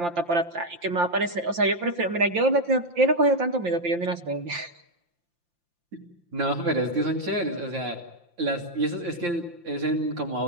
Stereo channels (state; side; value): late; left; 5.8 ms